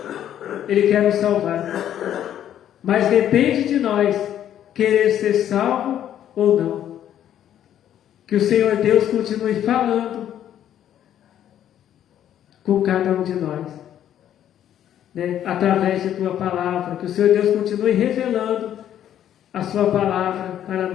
nos salvar. Mas depende de nós querer ser salvo ou não. Que o Senhor Deus continue falando com cada um de nós, né? Através de Tua palavra. Que o Senhor Deus continue revelando a Sua palavra para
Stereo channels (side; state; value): right; quieter; 10.7 dB